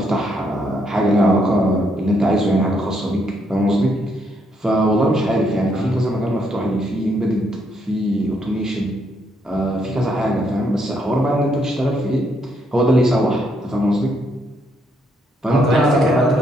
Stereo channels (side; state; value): both; normal; correlation 0.74